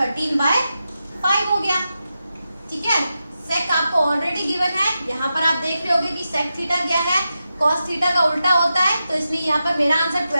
बाय 5 हो गया, ठीक है। सेक आपको ऑलरेडी गिवन है, यहाँ पर आप देख रहे होगे कि सेक थीटा क्या है, कॉस थीटा का उल्टा होता है। तो इसलिए यहाँ पर मेरा आंसर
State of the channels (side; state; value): both; inverted; correlation -0.89